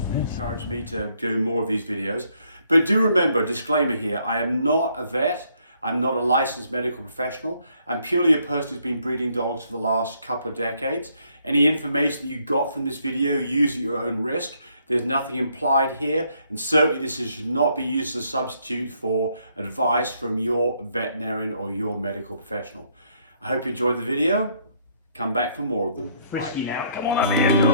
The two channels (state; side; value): inverted; both; correlation -0.69